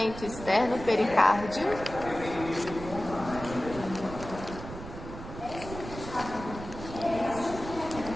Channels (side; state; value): right; noise; rumble, 11 dB below the sound